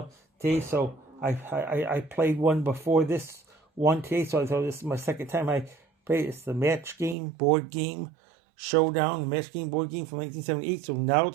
today. So I played one before this one today, so I thought this is my second time I played. It's the match game board game showdown, match game board game from 1978. So now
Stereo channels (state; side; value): drops out; left; at 7.2 s